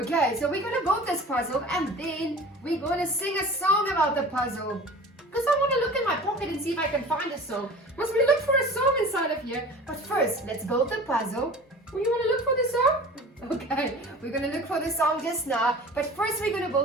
so we're going to build this puzzle and then we're going to sing a song about the puzzle. Because I want to look in my pocket and see if I can find a song. Must we look for a song inside of here? But first, let's build the puzzle. Oh, you want to look for the song? Okay, we're going to look for the song just now. But first we're going to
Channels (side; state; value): both; normal; correlation 0.40